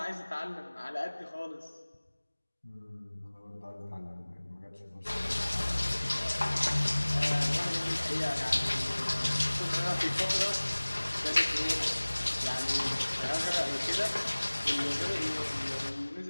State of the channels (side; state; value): both; inverted; correlation -1.00